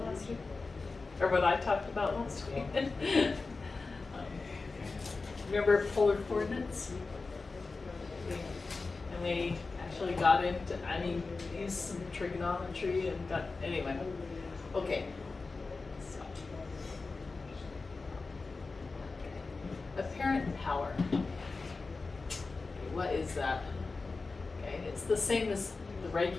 last week? Or what I talked about last week? Remember polar coordinates? And we actually got into, used some trigonometry and got, anyway. Okay. So. Apparent power. What is that? Okay, it's the same as the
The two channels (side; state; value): right; quieter; 3.9 dB